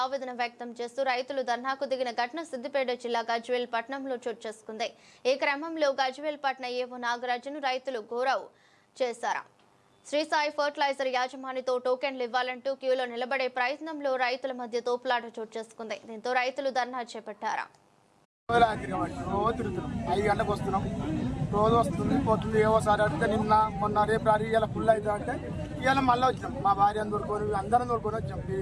ఆవేదన వ్యక్తం చేస్తూ రైతులు ధర్నాకు దిగిన ఘటన సిద్దిపేట జిల్లా గజ్వేల్ పట్టణంలో చోటు చేసుకుంది. ఈ క్రమంలో గజ్వేల్ పట్టణ ఏవో నాగరాజును రైతులు గౌరవ్ చేశారు. శ్రీ సాయి ఫర్టిలైజర్ యాజమానితో టోకెన్లు ఇవ్వాలంటూ క్యూలో నిలబడే ప్రయత్నంలో రైతుల మధ్య తోపులాట చోటు చేసుకుంది. దీంతో రైతులు ధర్నా చేపట్టారు. రోజు వస్తుంది పోతుంది ఏవోసారి అడిగితే నిన్న మొన్న రేపు రారి ఇలా ఫుల్ అవుతా అంటే ఇవాళ మళ్ళీ వచ్చినాం. మా భార్యను దొరుకుని అందరం దొరుకుని వచ్చాం.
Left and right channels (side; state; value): both; identical; correlation 1.00